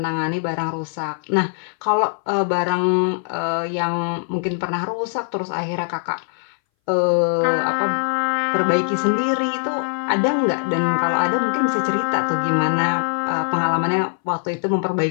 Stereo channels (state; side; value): silent; right; 61 dB below the other